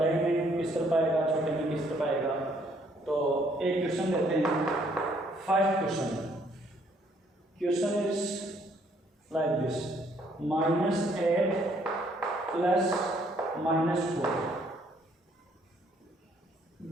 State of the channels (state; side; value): normal; both; correlation 0.66